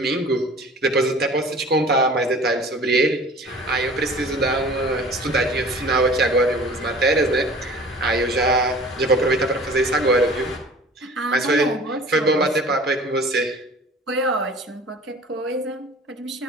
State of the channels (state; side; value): normal; both; correlation 0.45